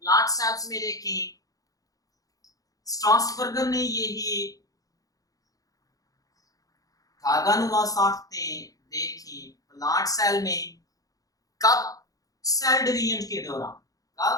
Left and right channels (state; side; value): late; right; 0.17 ms